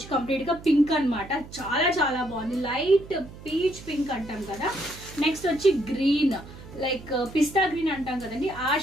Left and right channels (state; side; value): noise; right; hum, 16 dB below the sound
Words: కంప్లీట్ గా పింక్ అనమాట. చాలా చాలా బాగుంది. లైట్ పీచ్ పింక్ అంటాం కదా. నెక్స్ట్ వచ్చి గ్రీన్, లైక్ పిస్తా గ్రీన్ అంటాం కదండి, ఆ